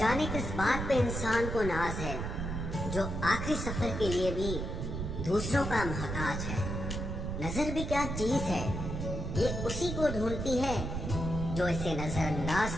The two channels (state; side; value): noise; right; rumble, 4 dB below the sound